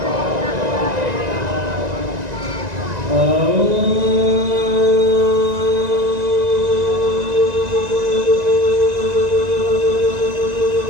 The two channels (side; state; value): left; late; 1.9 ms